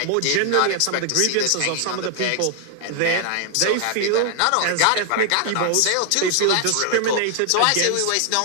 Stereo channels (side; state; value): both; different; correlation 0.00